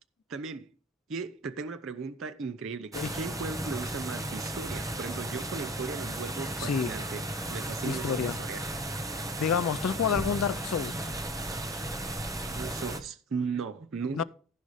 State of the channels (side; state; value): both; normal; correlation 0.39